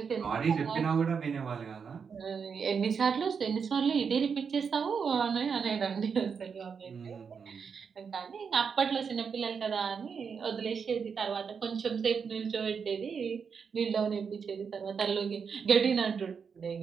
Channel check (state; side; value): quieter; left; 6.2 dB